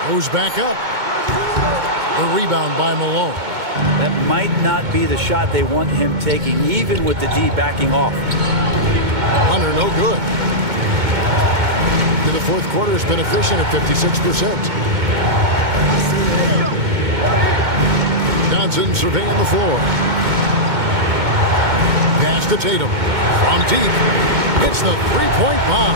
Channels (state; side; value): late; left; 2.2 ms